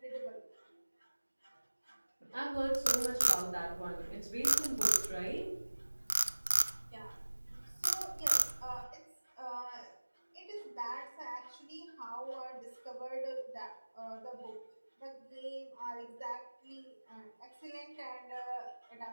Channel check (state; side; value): inverted; both; correlation -1.00